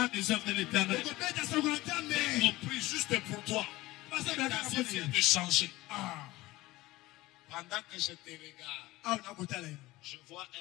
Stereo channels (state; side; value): quieter; right; 18.8 dB